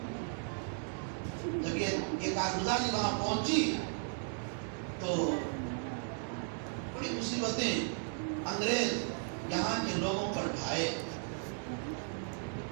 جب یہ کارگزاری وہاں پہنچی تو بڑی مصیبتیں انگریز یہاں کے لوگوں پر ڈھائے۔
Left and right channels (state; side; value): silent; left; 54 dB below the other